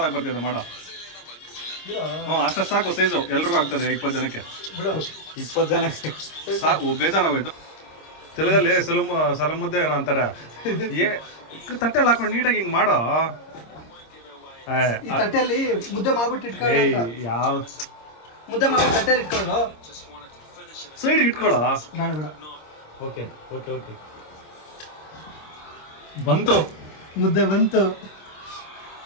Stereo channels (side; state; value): right; late; 26 ms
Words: ಬರ್ತಿದೆ ಮಾಡ. ಹ್ಞೂ ಅಷ್ಟು ಸಾಕು ಸೈಜು, ಎಲ್ರಿಗೂ ಆಗ್ತದೆ 20 ಜನಕ್ಕೆ. ಬಿಡು. 20 ಜನ ಸಾಕು, ಬೇಜಾನಾಗೋಯ್ತು. ತೆಲುಗಲ್ಲಿ ಸಲ ಮುದ್ದೆ ಏನೋ ಅಂತಾರೆ. ತಟ್ಟೆಲ್ಲಿ ಹಾಕೊಂಡು ನೀಟಾಗಿ ಹಿಂಗೆ ಮಾಡೋ. ಈ ತಟ್ಟೆಯಲ್ಲಿ ಮುದ್ದೆ ಮಾಡ್ಬಿಟ್ಟು ಇಟ್ಕೊಳ್ಳೋ ಏಯ್ ಅಂತ. ಯಾವ ಮುದ್ದೆ ಮಾಡ್ಬಿಟ್ಟು ತಟ್ಟೆಲಿ ಇಟ್ಕೊಳ್ಳೋದು. ಸೈಡ್ಗೆ ಇಟ್ಕೊಳ್ಳೋ. ಬೇಡ ಬೇಡ. ಓಕೆ ಓಕೆ ಓಕೆ ಬಂತು ಮುದ್ದೆ ಬಂತು.